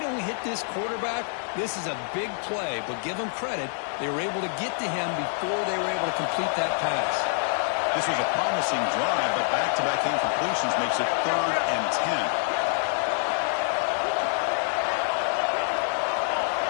don't hit this quarterback, this is a big play. But give them credit. They were able to get to him before they were able to complete that pass. This was a promising drive, but back-to-back incompletions makes it 3rd and 10.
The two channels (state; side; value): silent; right; 57 dB below the other